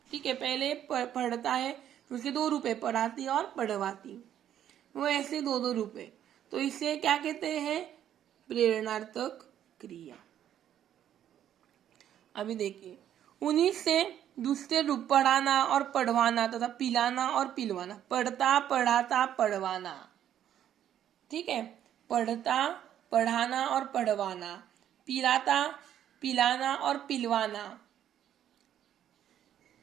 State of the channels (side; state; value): left; quieter; 10.6 dB